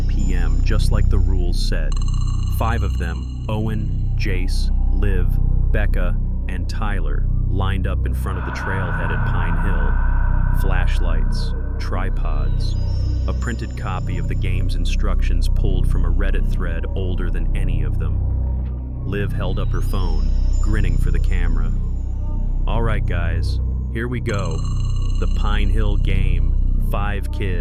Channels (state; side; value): identical; both; correlation 1.00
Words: p.m., just like the rules said. 5 of them, Owen, Jace, Liv, Becca, and Tyler, lined up in front of the trailhead at Pine Hill. Flashlights, tripods, a printed copy of the game's instructions pulled from a Reddit thread older than any of them. Liv held up her phone, grinning for the camera. All right, guys, here we go. The Pine Hill game. 5